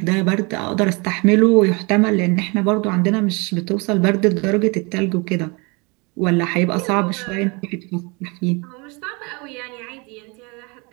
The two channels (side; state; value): left; quieter; 29.0 dB